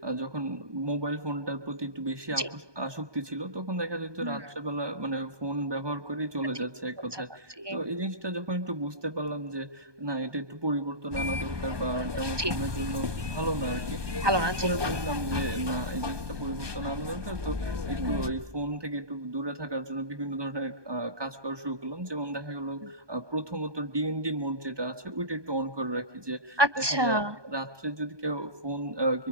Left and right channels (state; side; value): late; left; 1.2 ms